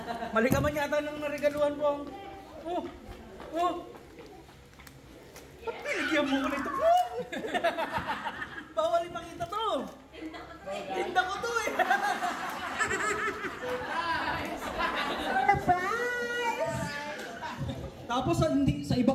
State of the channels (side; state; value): both; identical; correlation 1.00